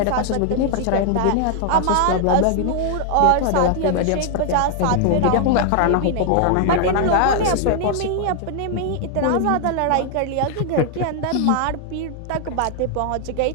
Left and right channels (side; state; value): both; different; correlation 0.00